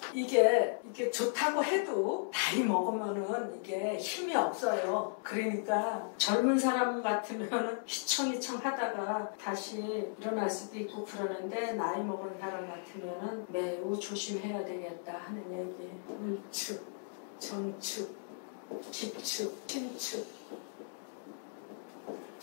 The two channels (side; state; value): right; silent; digital silence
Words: 이게 좋다고 해도 나이 먹으면은 이게 힘이 없어요. 그러니까 젊은 사람 같으면 휘청휘청 하다가 다시 일어날 수도 있고 그러는데 나이 먹은 사람 같으면은 매우 조심해야 되겠다 하는 얘기. 을축, 정축, 기축, 신축,